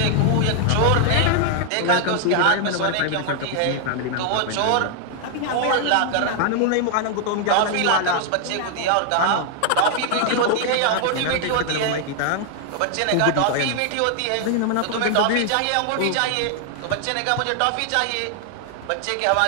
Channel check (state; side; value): different; both; correlation 0.00